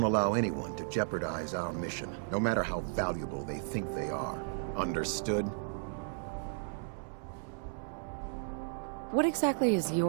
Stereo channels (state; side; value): silent; left; 55 dB below the other